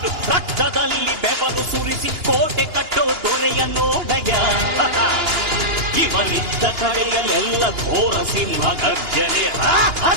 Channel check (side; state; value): left; late; 2.9 ms